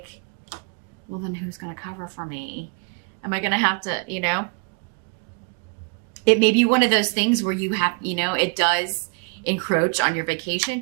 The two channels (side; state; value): left; quieter; 36.2 dB